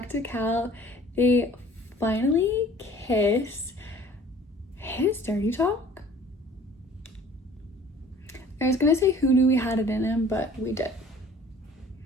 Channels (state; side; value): normal; both; correlation 0.50